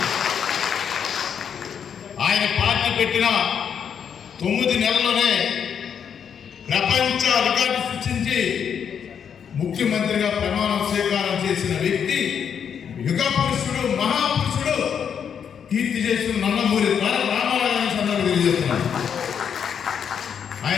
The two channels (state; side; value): quieter; right; 7.7 dB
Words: ఆయన పార్టీ పెట్టిన 9 నెలల్లోనే ప్రపంచ రికార్డు సృష్టించి ముఖ్యమంత్రిగా ప్రమాణ స్వీకారం చేసిన వ్యక్తి, యుగ పురుషుడు, మహాపురుషుడు, కీర్తి చేసిన నందమూరి తారక రామారావు గురించి అందరూ తెలియజేస్తున్నారు.